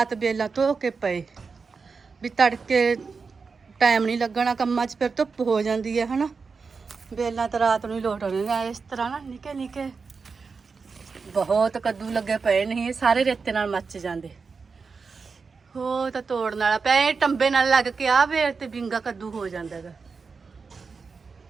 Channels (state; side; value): quieter; left; 4.9 dB